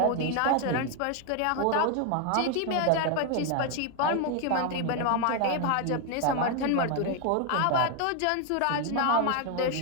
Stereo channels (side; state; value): both; different; correlation 0.01